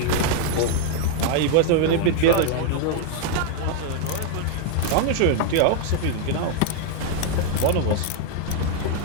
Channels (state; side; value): different; both; correlation 0.00